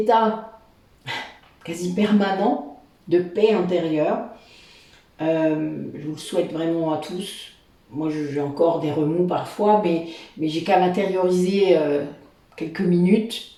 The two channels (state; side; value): identical; both; correlation 1.00